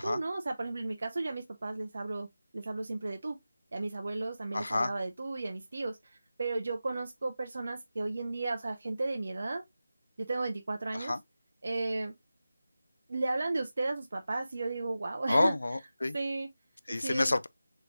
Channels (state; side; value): inverted; both; correlation -0.95